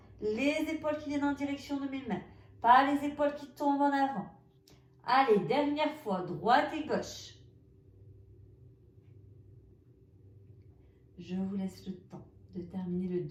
les épaules qui viennent en direction de mes mains, pas les épaules qui tombent en avant. Allez, dernière fois, droite et gauche. Je vous laisse le temps de terminer le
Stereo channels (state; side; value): identical; both; correlation 1.00